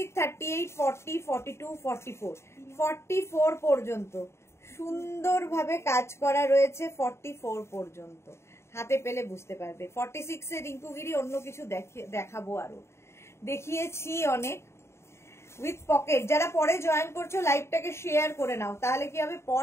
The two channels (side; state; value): right; late; 0.13 ms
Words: 38, 40, 42, 44, 44 পর্যন্ত সুন্দরভাবে কাজ করা রয়েছে। 44 পর্যন্ত হাতে পেলে বুঝতে পারবে। 46 এর রিঙ্কুগিরি অন্য কিছু দেখাবো, আরো দেখিয়েছি অনেক। With pocket. যারা পরে জয়েন করছো লাইভটাকে শেয়ার করে নাও, তাহলে কি হবে